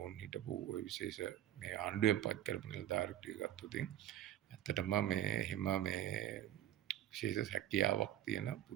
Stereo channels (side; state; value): left; quieter; 12.2 dB